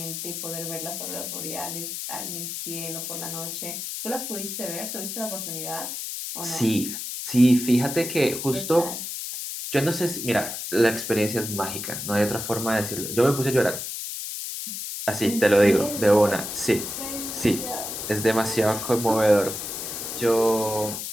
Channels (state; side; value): noise; left; hiss, 6 dB below the sound